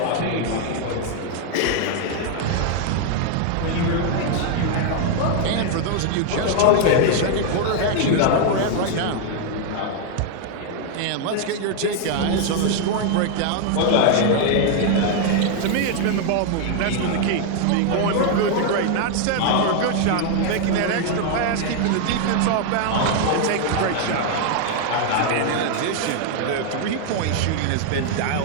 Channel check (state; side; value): different; both; correlation 0.00